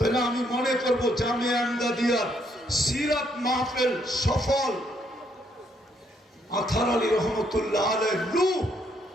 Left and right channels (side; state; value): both; normal; correlation 0.71